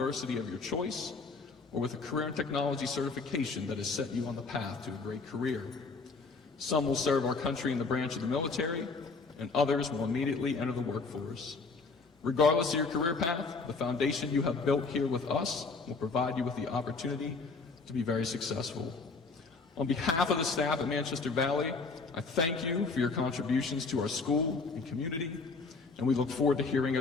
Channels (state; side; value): quieter; right; 4.2 dB